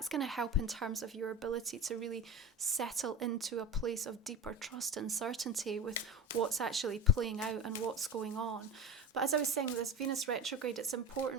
going to help in terms of your ability to really settle into a place of deeper trust and certainty with what's actually playing out and what's going on. But as I was saying, with this Venus retrograde, it's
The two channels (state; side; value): normal; both; correlation 0.28